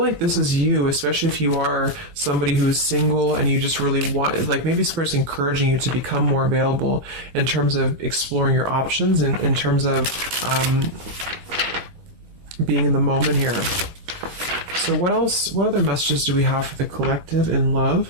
this is you, especially if you are somebody who is single and you just really want, like maybe Spirit's encouraging you to become more available in terms of exploring your options and in terms of being in the moment here. So what else, what other messages do we have for the collective in love?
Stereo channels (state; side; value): late; left; 18 ms